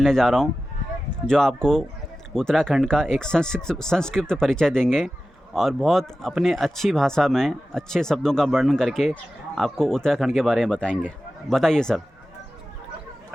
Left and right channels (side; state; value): both; normal; correlation 0.94